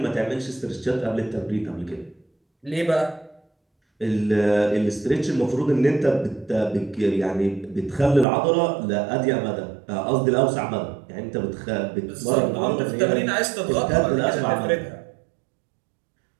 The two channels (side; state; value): left; drops out; at 8.2 s